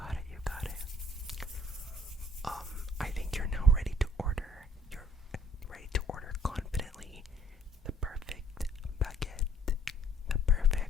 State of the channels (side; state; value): both; normal; correlation 0.60